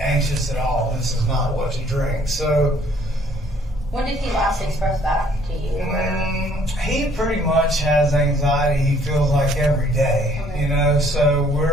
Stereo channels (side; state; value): both; normal; correlation 0.61